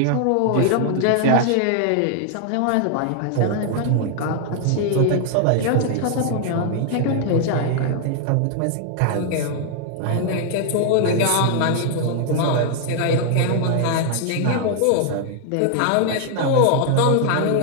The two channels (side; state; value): both; different; correlation 0.00